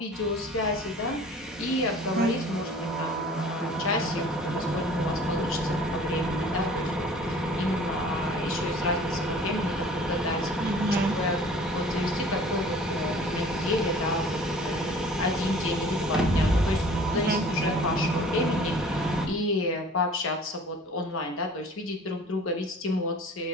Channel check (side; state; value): both; normal; correlation 0.47